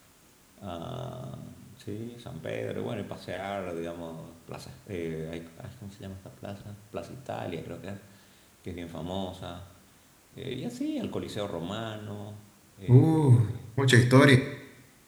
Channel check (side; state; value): both; identical; correlation 1.00